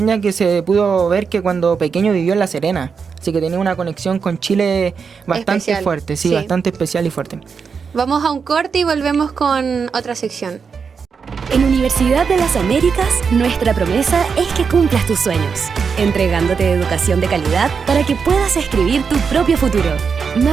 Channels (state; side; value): quieter; left; 5.8 dB